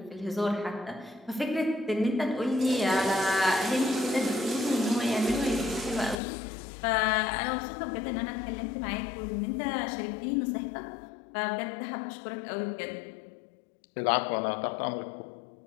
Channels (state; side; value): drops out; right; at 6.2 s